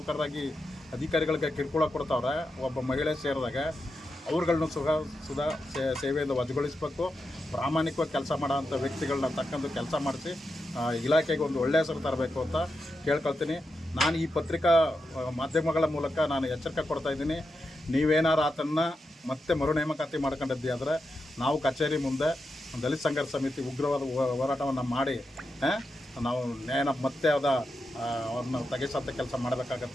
ಅಧಿಕಾರಿಗಳಿಗೆ ಕಿರುಕುಳ ಕೊಡ್ತಾವ್ರೆ, ಒಬ್ಬ ಮಹಿಳೆ ಸೇರಿದಾಗ ಅವ್ರುಗಳನ್ನೂ ಸುಧಾ ಸೇವೆಯಿಂದ ವಜಾಗೊಳಿಸಬೇಕು. ಪ್ರಾಮಾಣಿಕವಾಗಿ ಕೆಲಸ ಮಾಡೋಂಥ ವ್ಯಕ್ತಿಗಳನ್ನ ತಕ್ಕಂದು ಕೆಲಸ ಮಾಡಿಸಿ ಇಲಾಖೆಗೆ ಒಂದು ಒಳ್ಳೆಯ ಹೆಸರು ತರಬೇಕು ಅಂತ ಕೇಳ್ಕೊಳ್ತೀನಿ. ನಾನು ಈ ಪತ್ರಿಕಾ ಮಾಧ್ಯಮಗಳ ಮೂಲಕ ನಾನು ಎಚ್ಚರಿಕೆ ಕೊಡ್ತಾಯಿದ್ದೀನಿ. ನೀವೇನಾರು ಆತನ್ನು ಮತ್ತೆ ಮರು ನೇಮಕಾತಿ ಮಾಡ್ಕೊಂಡಿದ್ದಿ ಆದರೆ ನಾವು ಕಚೇರಿ ಮುಂದೆ ದಲಿತ ಸಂಘರ್ಷ ಸಮಿತಿ ಉಗ್ರವಾದ ಹೋರಾಟವನ್ನು ಮಾಡಿ ನಾವು ನ್ಯಾಯನ ಮತ್ತೆ ಅವ್ರನ್ನ ತೆಗೆಸಂಥ ಕೆಲಸ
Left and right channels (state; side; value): normal; both; correlation 0.87